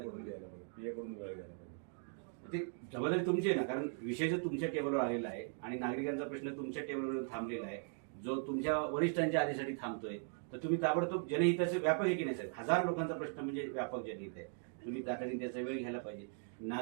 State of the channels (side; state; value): left; silent; 52 dB below the other